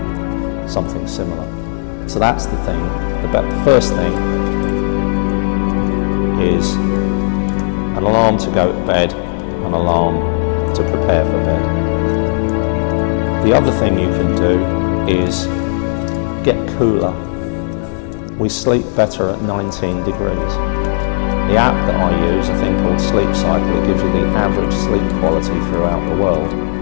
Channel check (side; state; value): right; silent; digital silence